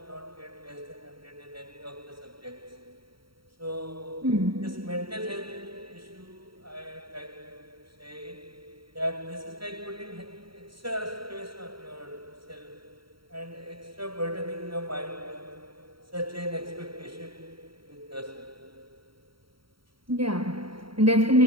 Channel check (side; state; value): left; late; 0.74 ms